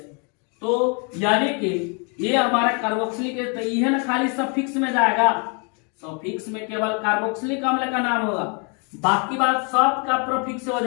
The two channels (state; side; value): quieter; right; 36.4 dB